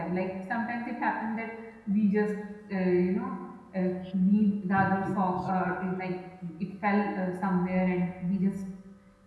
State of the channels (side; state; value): both; identical; correlation 1.00